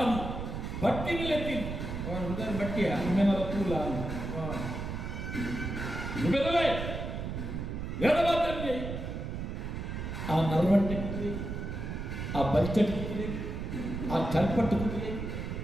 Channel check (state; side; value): noise; right; rumble, 5 dB below the sound